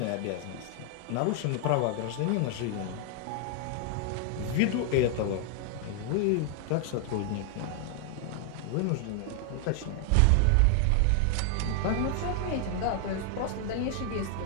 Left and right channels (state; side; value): different; both; correlation 0.00